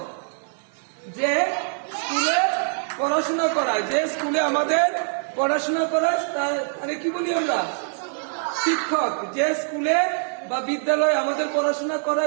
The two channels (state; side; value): silent; left; digital silence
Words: যে স্কুলে পড়াশোনা করায়, যে স্কুলে আমাদের পড়াশোনা করায় তারে কি বলি আমরা? শিক্ষক। যে স্কুলে বা বিদ্যালয়ে আমাদের পড়াশোনা